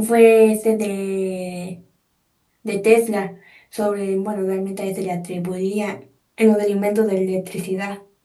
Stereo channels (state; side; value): identical; both; correlation 1.00